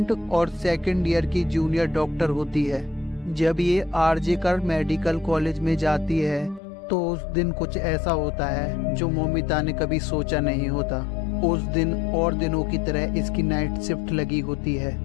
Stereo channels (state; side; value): drops out; right; at 6.6 s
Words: और सेकेंड ईयर की जूनियर डॉक्टर होती है। जब ये आरजिकल मेडिकल कॉलेज में जाती है तो उस दिन कुछ ऐसा होता है जो मौमिता ने कभी सोचा नहीं होता। उस दिन और दिनों की तरह इसकी नाइट शिफ्ट लगी होती है।